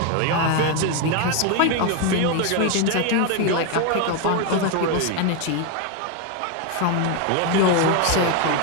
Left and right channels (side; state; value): both; different; correlation 0.02